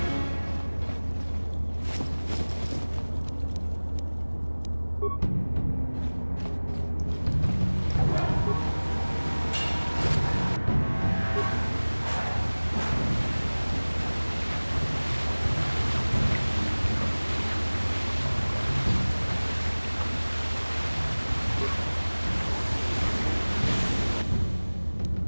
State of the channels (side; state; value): both; inverted; correlation -1.00